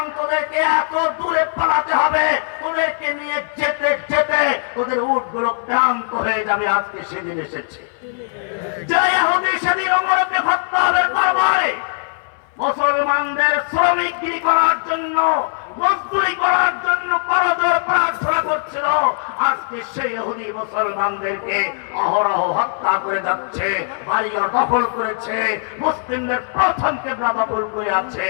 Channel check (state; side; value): silent; right; 60 dB below the other